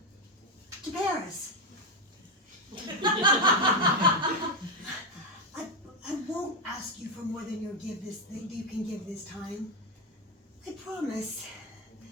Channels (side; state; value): both; normal; correlation 0.07